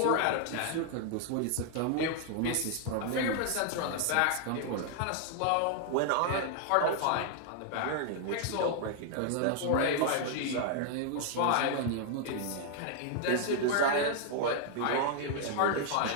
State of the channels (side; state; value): both; different; correlation 0.00